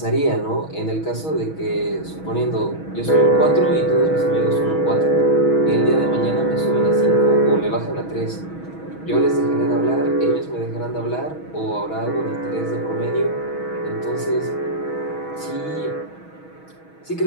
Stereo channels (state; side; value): late; right; 6.2 ms